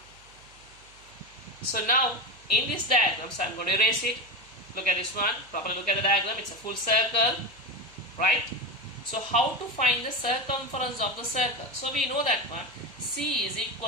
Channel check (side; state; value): right; noise; hum, 26 dB below the sound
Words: So now in this diagram, so I'm going to erase it. Look at this one, properly look at the diagram, it's a full circle, right? So how to find the circumference of the circle? So we know that one, C is equal